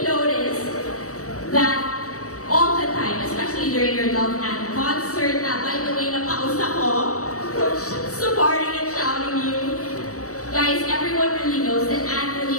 noticed that all the time, especially during your Love and concert, na by the way, napausap ko, supporting and shouting you. Guys, everyone really knows that Anne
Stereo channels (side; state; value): right; late; 0.65 ms